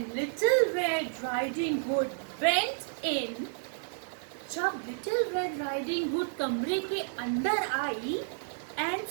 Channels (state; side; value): silent; left; digital silence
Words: Little Red Riding Hood went in, जब Little Red Riding Hood कमरे के अंदर आई and